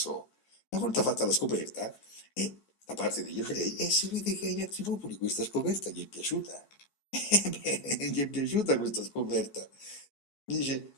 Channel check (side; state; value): right; late; 14 ms